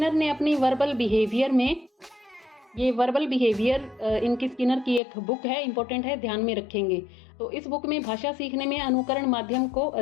ने अपनी वर्बल बिहेवियर में, ये वर्बल बिहेवियर इनकी स्किनर की एक बुक है, इंपॉर्टेंट है, ध्यान में रखेंगे। तो इस बुक में भाषा सीखने में अनुकरण माध्यम को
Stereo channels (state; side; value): drops out; right; at 5.0 s